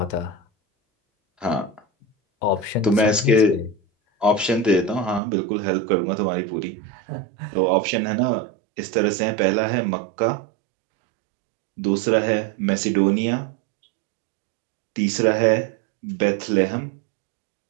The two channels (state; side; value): drops out; left; at 5.2 s